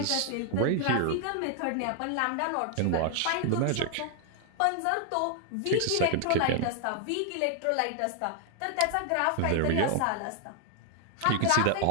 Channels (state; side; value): different; both; correlation 0.00